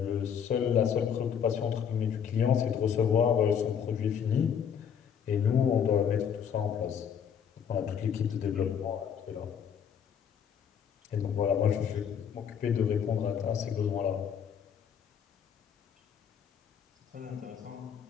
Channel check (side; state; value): right; quieter; 7.9 dB